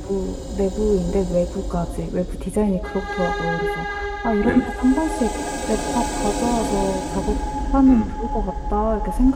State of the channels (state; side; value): identical; both; correlation 1.00